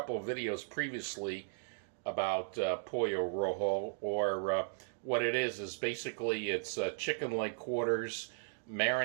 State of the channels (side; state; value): left; silent; digital silence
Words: of videos previously about Pollo Rojo, or what it is basically it's chicken leg quarters